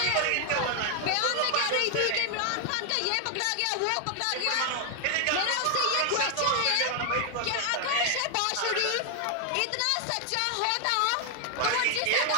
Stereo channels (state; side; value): different; both; correlation 0.00